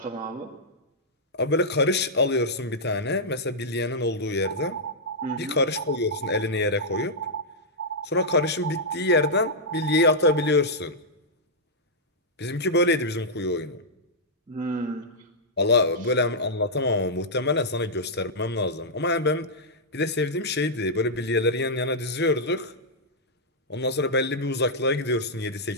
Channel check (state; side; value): normal; both; correlation -0.09